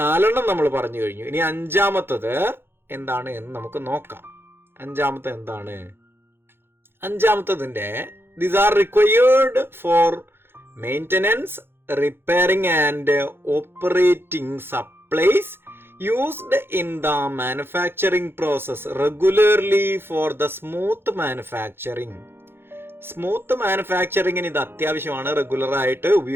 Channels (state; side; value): late; left; 0.11 ms